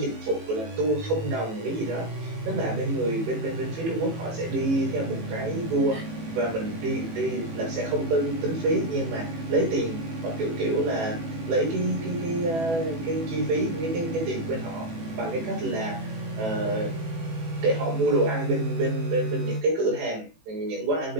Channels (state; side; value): late; left; 18 ms